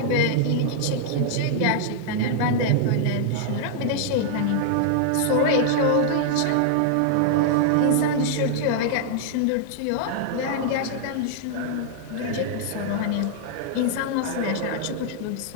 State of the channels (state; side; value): different; both; correlation -0.01